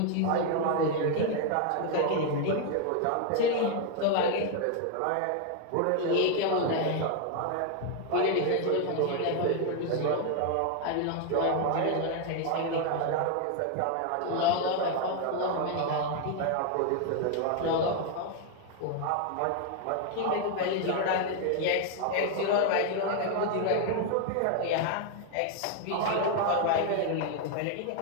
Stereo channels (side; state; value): both; different; correlation 0.00